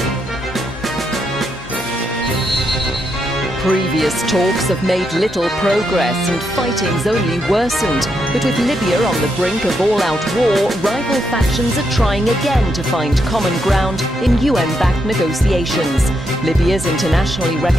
Previous talks have made little progress and fighting's only worsened. But with Libya on the brink of all-out war, rival factions are trying again to find common ground in UN-backed negotiations. Libya's internationally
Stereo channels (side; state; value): both; normal; correlation 0.80